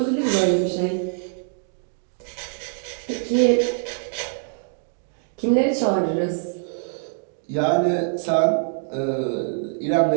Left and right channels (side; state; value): left; silent; digital silence